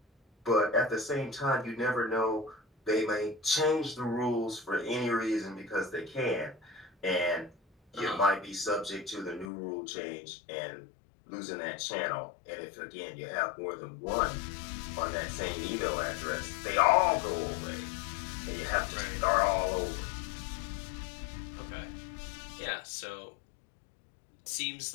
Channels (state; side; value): drops out; right; at 9.5 s